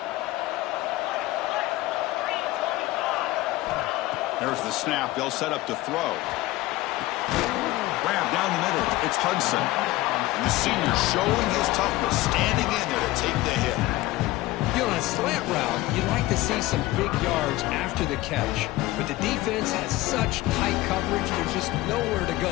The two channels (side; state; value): right; quieter; 18.0 dB